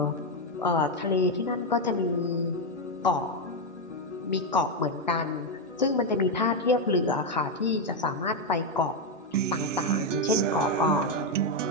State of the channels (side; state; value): both; normal; correlation 0.04